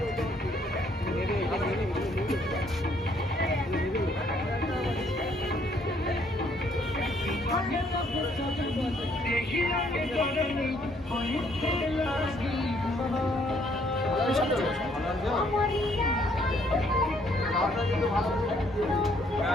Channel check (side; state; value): both; normal; correlation 0.66